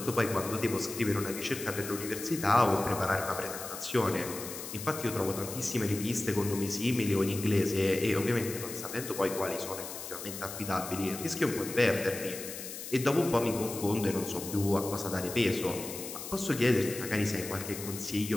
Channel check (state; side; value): noise; left; hiss, 9 dB below the sound